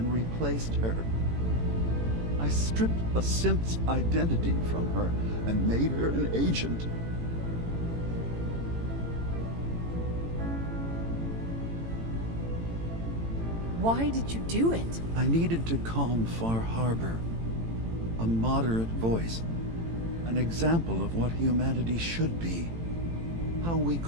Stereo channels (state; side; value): late; left; 18 ms